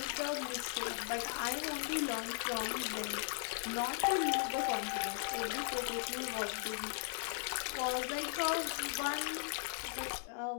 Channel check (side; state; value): right; silent; 53 dB below the other